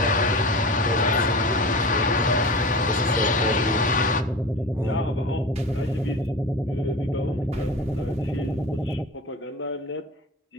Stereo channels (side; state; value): both; normal; correlation 0.35